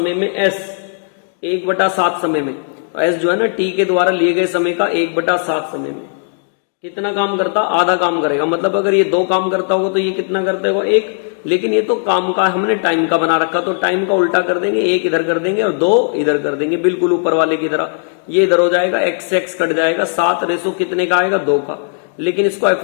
में एस, 1/7 समय में, तो एस जो है ना टी के द्वारा लिए गए समय का 1/7 समय में कितना काम करता, आधा काम करेगा। मतलब अगर ये 2 काम करता होगा तो ये कितना करता होगा 1, लेकिन ये तो काम का हमने टाइम का बना रखा, तो टाइम का उल्टा कर देंगे, 1 इधर कर देंगे और 2 इधर कर देंगे, बिल्कुल ऊपर वाले की तरह। ये इधर हो जाएगा, एक्स से एक्स कट जाएगा, 7 रेशो कितने का आएगा 2 का। लेकिन इसको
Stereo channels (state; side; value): silent; right; 68 dB below the other